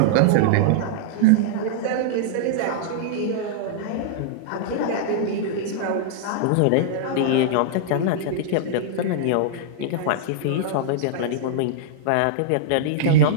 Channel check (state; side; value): different; both; correlation -0.02